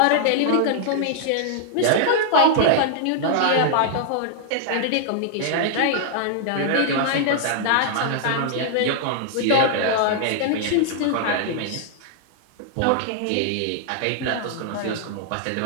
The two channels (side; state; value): both; different; correlation -0.01